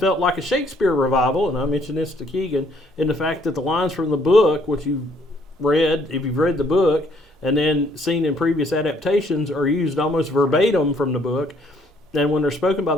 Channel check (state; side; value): normal; both; correlation 0.65